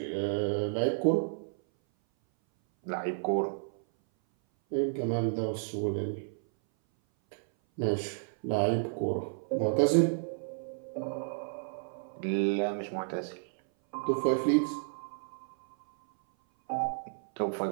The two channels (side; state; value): left; silent; 57 dB below the other